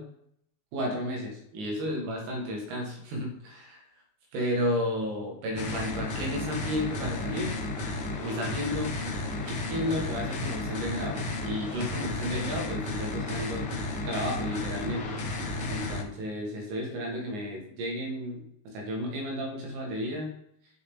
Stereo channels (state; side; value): late; left; 19 ms